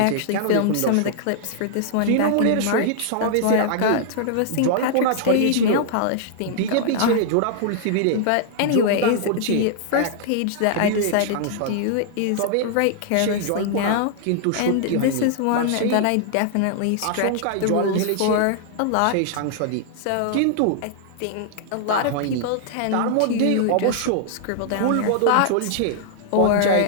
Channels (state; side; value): different; both; correlation -0.01